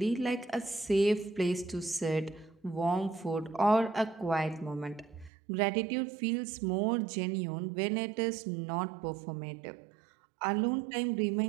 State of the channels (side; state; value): left; drops out; at 5.3 s